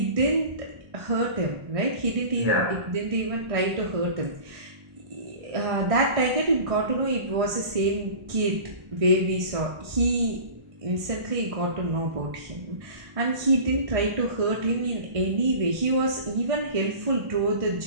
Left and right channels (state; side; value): late; left; 1.5 ms